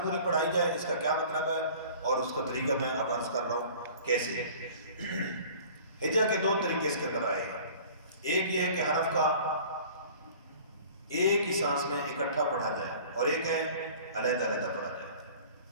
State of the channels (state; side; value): inverted; both; correlation -0.46